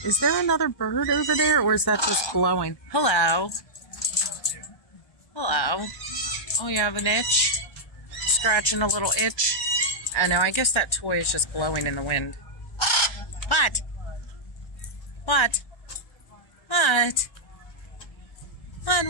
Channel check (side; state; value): right; late; 1.3 ms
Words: Is there another bird over there, or is that just blowing? Hello. Hello. Oh, you have an itch? Scratching a little itch? I know, I guess that toy is just blowing in the wind. What? What? What?